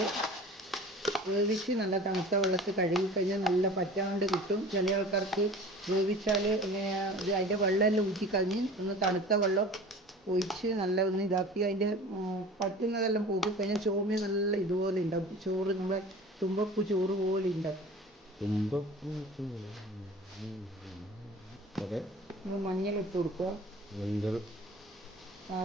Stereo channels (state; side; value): normal; both; correlation 0.41